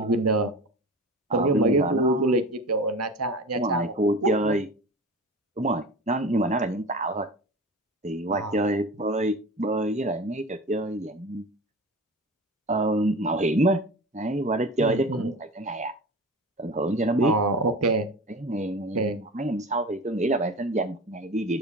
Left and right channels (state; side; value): normal; both; correlation 0.33